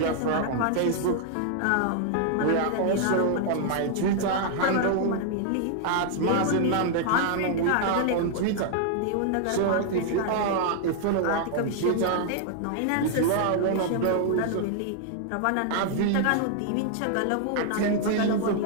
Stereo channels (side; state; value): both; different; correlation 0.00